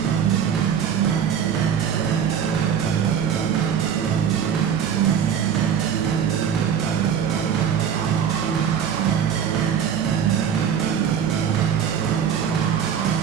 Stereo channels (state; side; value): quieter; left; 8.1 dB